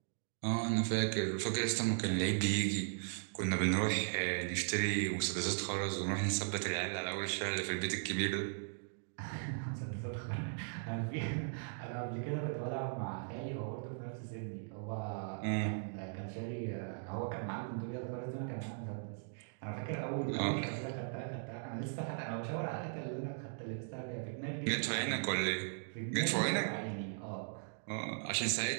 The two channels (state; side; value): silent; left; digital silence